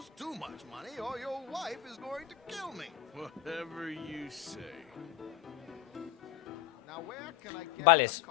too much money or your wife is going to kill me. Whatever you say. Now where can I get Vale. a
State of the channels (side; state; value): right; quieter; 11.7 dB